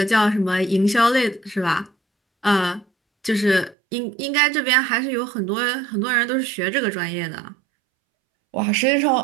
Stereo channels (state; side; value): drops out; left; at 3.8 s